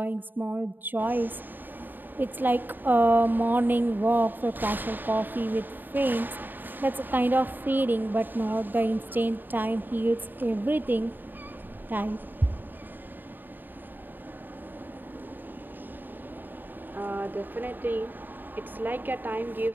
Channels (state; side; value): late; left; 0.091 ms